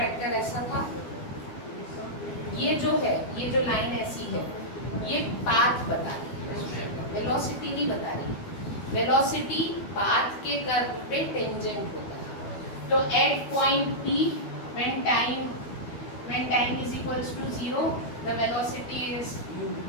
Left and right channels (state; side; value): late; right; 12 ms